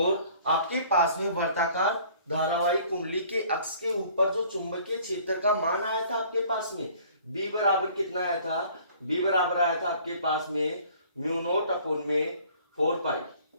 आपके पास में वर्ताकार धारावाहिक कुंडली के अक्ष के ऊपर जो चुंबकीय क्षेत्र का मान आया था आपके पास में बी बराबर कितना आया था, बी बराबर आया था आपके पास में म्यू नोट अपॉन में 4 पाई,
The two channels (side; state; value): both; inverted; correlation -0.54